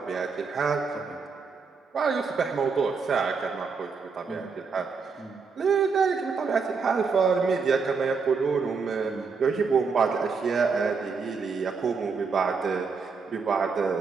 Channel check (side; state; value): left; quieter; 5.1 dB